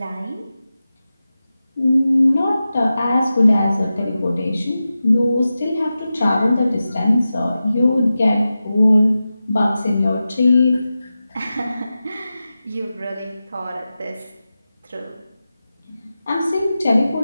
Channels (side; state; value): both; inverted; correlation -0.93